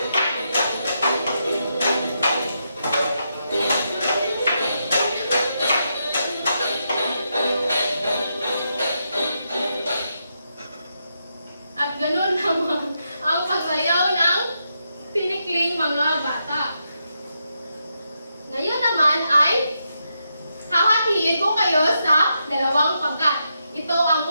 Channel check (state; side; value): inverted; both; correlation -0.83